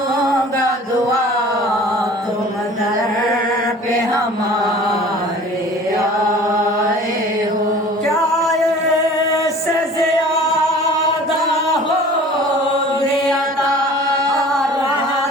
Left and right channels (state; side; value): normal; both; correlation 0.45